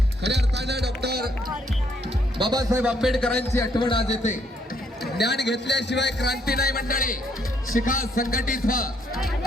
खऱ्या अर्थानं डॉक्टर बाबासाहेब आंबेडकरांची आठवण आज येते. ज्ञान घेतल्याशिवाय क्रांती नाही मंडळी. शिका संघटित व्हा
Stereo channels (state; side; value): normal; both; correlation 0.70